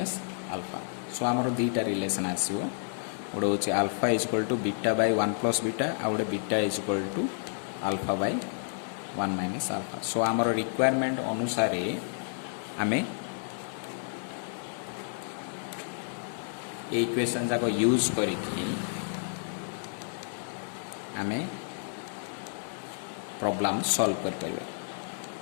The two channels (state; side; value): silent; right; digital silence